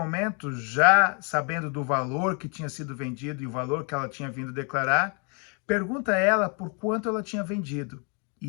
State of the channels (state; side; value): quieter; right; 36.4 dB